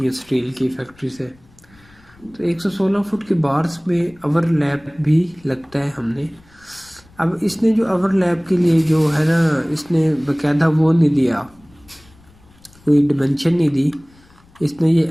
है स्टील की फैक्ट्री से। तो 116 फुट की बार्स में ओवरलैप भी लगता है हमने। अब इसने जो ओवरलैप के लिए जो है ना, इसने बकायदा वो नहीं दिया, कोई डिमेंशन नहीं दी। इसने ये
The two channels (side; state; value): left; noise; rumble, 28 dB below the sound